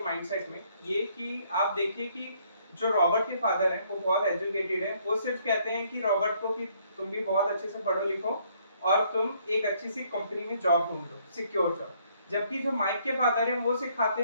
माइंडसेट में, ये कि आप देखिए कि जो रॉबर्ट के फादर हैं वो बहुत एजुकेटेड हैं। वो सिर्फ कहते हैं कि रॉबर्ट को कि तुम भी बहुत अच्छे से पढ़ो लिखो और तुम एक अच्छी सी कंपनी में जॉब ढूंढ लो, सिक्योर जॉब। जबकि जो माइक के फादर हैं वो सिखाते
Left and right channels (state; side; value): inverted; both; correlation -0.66